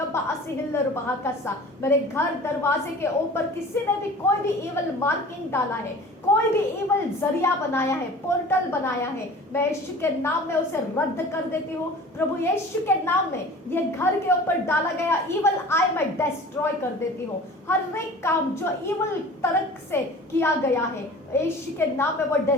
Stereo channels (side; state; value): both; normal; correlation 0.42